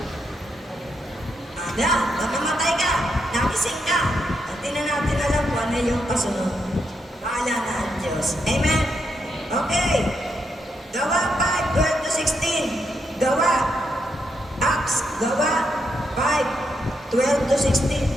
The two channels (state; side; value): normal; both; correlation 0.81